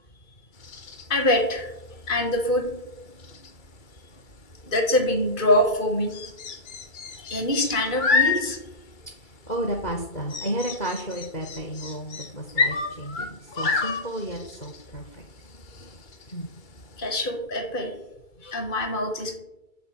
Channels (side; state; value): right; late; 2.3 ms